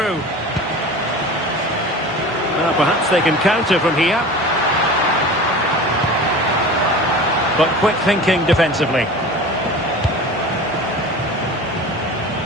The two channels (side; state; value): both; normal; correlation 0.36